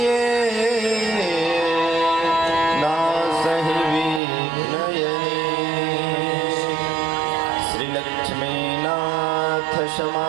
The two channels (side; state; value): left; drops out; at 4.2 s